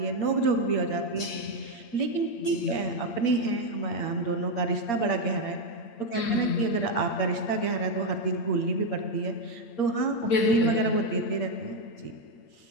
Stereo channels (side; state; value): right; late; 8.7 ms